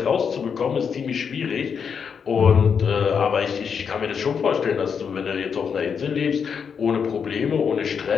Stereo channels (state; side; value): quieter; right; 6.6 dB